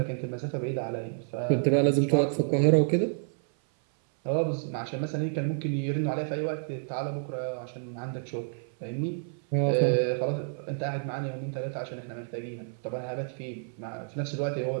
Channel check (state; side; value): silent; left; 56 dB below the other